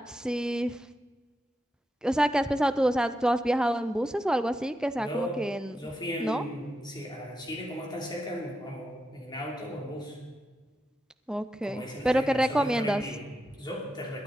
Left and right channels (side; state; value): both; normal; correlation 0.87